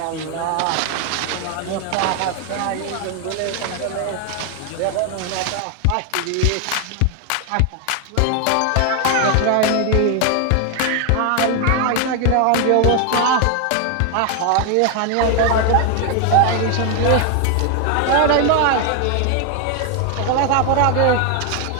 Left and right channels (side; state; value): both; different; correlation 0.01